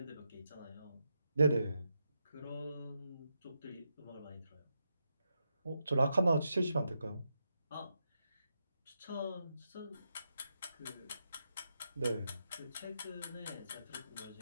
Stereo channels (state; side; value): inverted; both; correlation -0.84